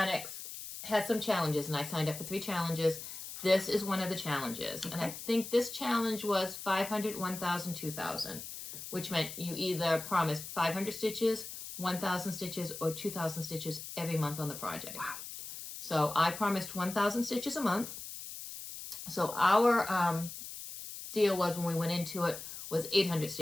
has some challenges, and I signed up for 3 challenges. This is one of the challenges. Okay. And I think this challenge was 500, 1,000, 2,000, which meant you either promised 500 stitches, 1,000 stitches, or 2,000 stitches every month on the project. Wow. So I promised 1,000 stitches a month. So our deal was when we went into it was 800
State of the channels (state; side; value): noise; left; hiss, 10 dB below the sound